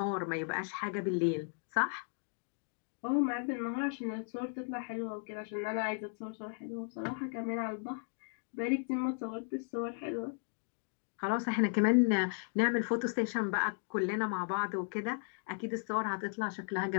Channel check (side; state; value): right; silent; 54 dB below the other